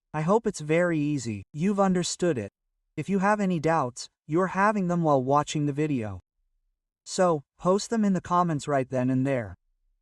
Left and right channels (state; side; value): identical; both; correlation 1.00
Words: I hope it's very easy, you've understood it. If you have any doubts, you're having them while watching the video. So, post them in the comments right then and there.